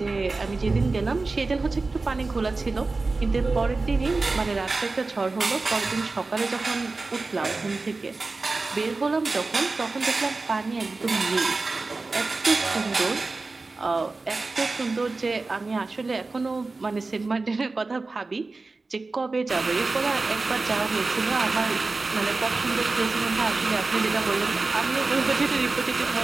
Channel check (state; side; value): quieter; left; 3.6 dB